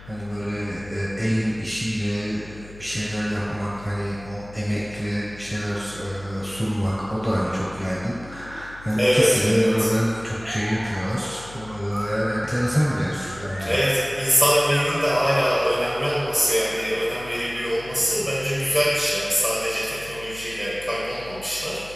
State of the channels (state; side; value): noise; left; hum, 18 dB below the sound